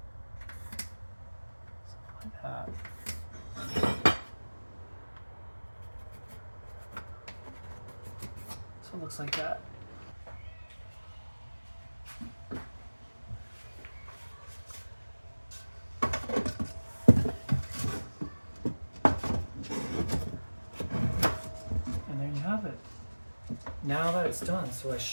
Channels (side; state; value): both; inverted; correlation -1.00